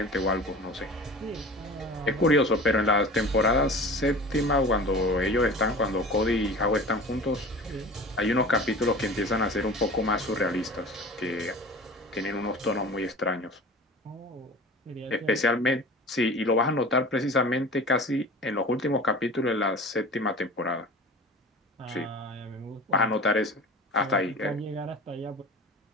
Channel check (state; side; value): normal; both; correlation 0.38